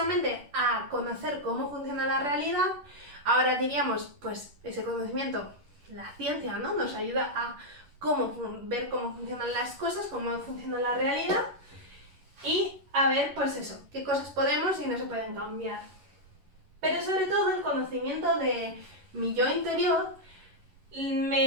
a conocer cómo funciona la realidad. Ahora diríamos, pues ese conocimiento, la ciencia, ¿no? Nos ayuda a ver cómo funcionan las cosas, cómo funciona la realidad y a ver, pues eso, qué cosas podemos y no se pueden cambiar. Pero sobre todo el conocimiento de mi yo interior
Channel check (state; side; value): late; left; 11 ms